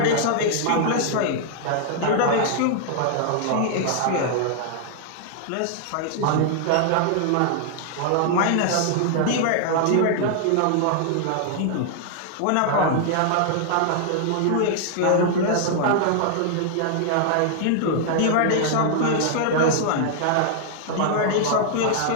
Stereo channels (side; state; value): both; different; correlation -0.01